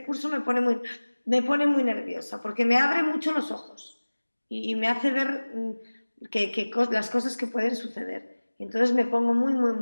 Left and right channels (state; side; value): inverted; both; correlation -1.00